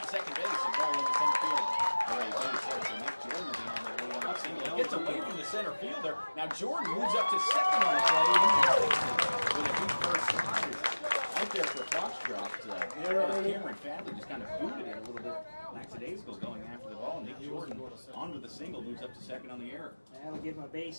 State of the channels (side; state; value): both; inverted; correlation -1.00